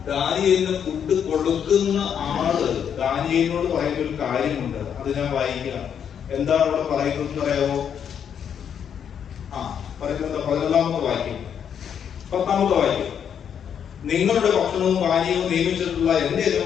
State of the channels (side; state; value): right; quieter; 8.2 dB